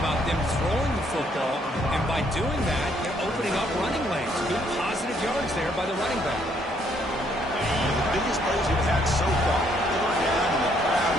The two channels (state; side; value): normal; both; correlation 0.69